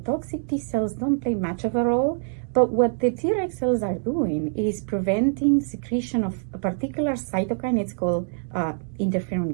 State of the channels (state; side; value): silent; left; digital silence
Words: T cells don't play much of a role, but what the Treg cells are doing is preventing secretion of a particular cytokine. It's called interferon